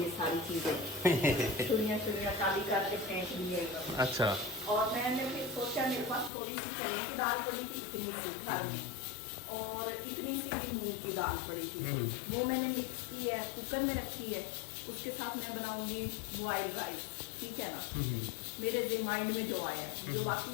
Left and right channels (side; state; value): right; drops out; at 6.3 s